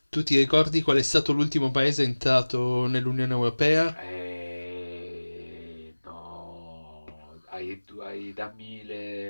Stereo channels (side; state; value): both; inverted; correlation -1.00